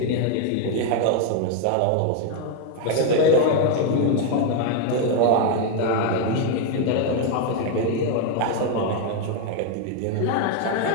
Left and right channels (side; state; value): both; different; correlation 0.01